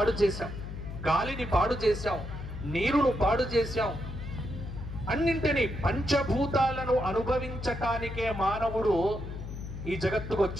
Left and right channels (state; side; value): noise; left; hum, 9 dB below the sound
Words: చేశాం, గాలిని పాడు చేశాం, నీరును పాడు చేశాం. అన్నింటినీ పంచభూతాలను అనుభవించటానికే మానవుడు ఈ జగత్తుకు